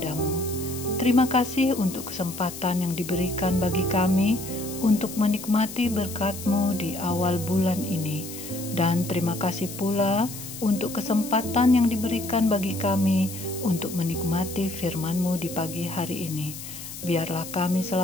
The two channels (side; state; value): left; noise; hiss, 11 dB below the sound